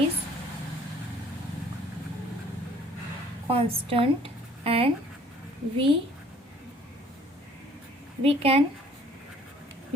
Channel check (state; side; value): normal; both; correlation 0.56